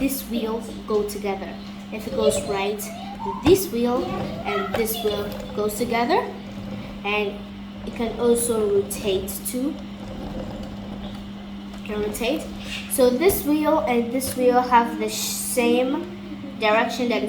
wheel go together. If it goes right, this wheel and this wheel goes together. And it can also rotate too. It can rotate. So this wheel and this wheel have the same direction that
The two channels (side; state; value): both; identical; correlation 1.00